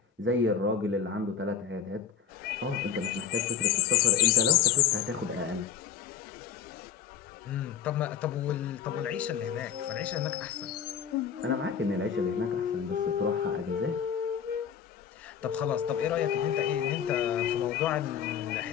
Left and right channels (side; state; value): right; quieter; 8.3 dB